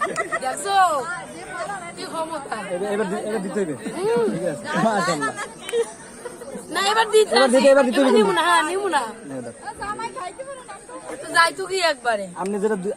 এবার দিতে হবে। ঠিক আছে না এবার দিতে নিব না। হ্যাঁ নিব না। যাই তো কি একবারে আপনি যেটা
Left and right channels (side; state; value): both; identical; correlation 1.00